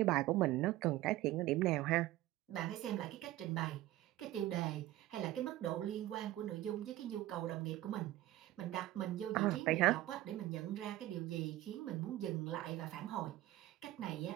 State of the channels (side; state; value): left; quieter; 15.6 dB